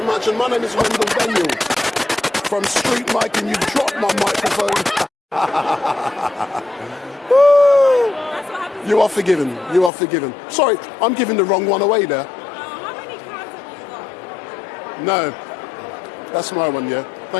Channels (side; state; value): right; drops out; at 9.9 s